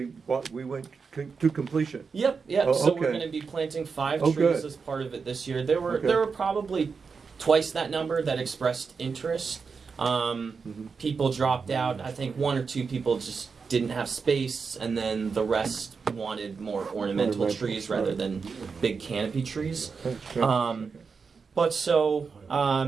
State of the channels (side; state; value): left; quieter; 5.3 dB